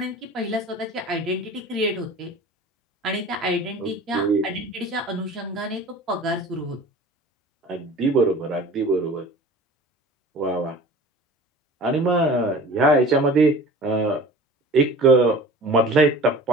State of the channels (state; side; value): normal; both; correlation 0.41